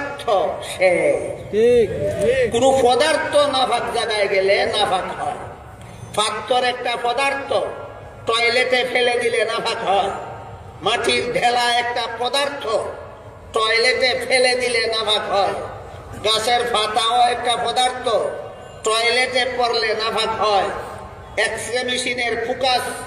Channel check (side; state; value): both; identical; correlation 1.00